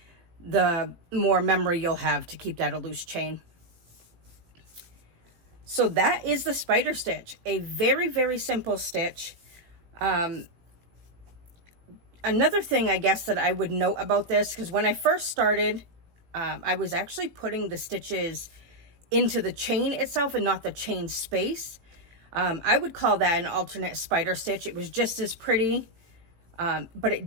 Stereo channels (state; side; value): late; left; 18 ms